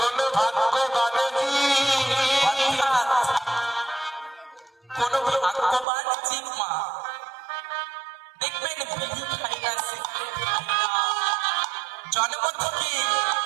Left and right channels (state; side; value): drops out; left; at 5.9 s